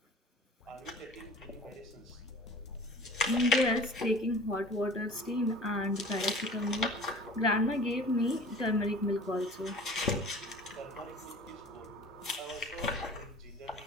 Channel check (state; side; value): normal; both; correlation 0.44